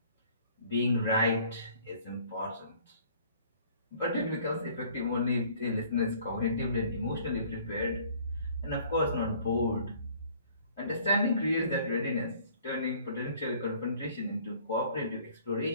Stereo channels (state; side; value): inverted; both; correlation -0.55